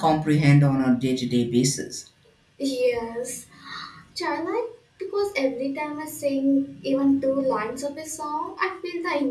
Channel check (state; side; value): identical; both; correlation 1.00